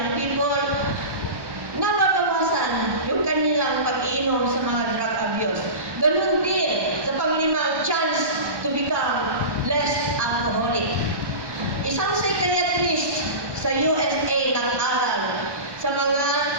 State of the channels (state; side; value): late; left; 1.1 ms